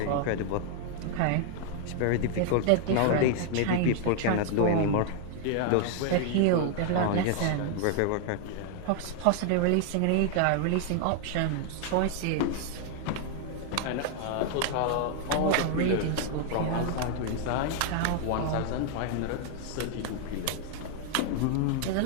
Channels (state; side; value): different; both; correlation 0.00